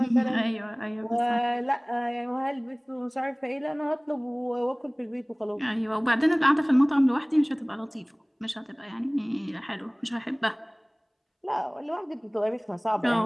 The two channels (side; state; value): both; identical; correlation 1.00